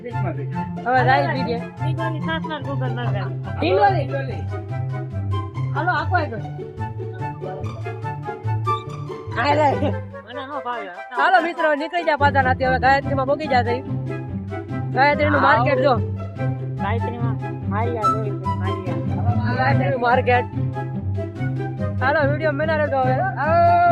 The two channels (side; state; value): both; identical; correlation 1.00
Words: હવે જાય બીજે હાલો આખો હાલો મિત્રો નીકળી જાય પાછા નાથી. હવે ગાયત્રી માં પોગી જાય. ગાયત્રી નું માર્કેટ જો. માર્કેટ હાલો વિડીયો મેના રહેતો. હવે